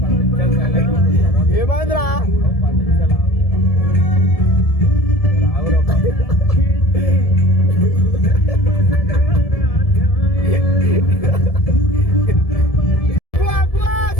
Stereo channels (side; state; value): right; late; 1.7 ms